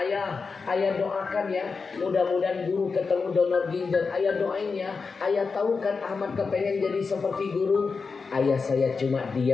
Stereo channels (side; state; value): right; quieter; 4.8 dB